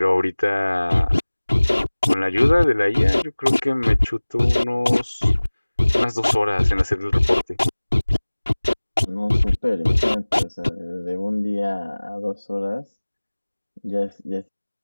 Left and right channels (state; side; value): inverted; both; correlation -1.00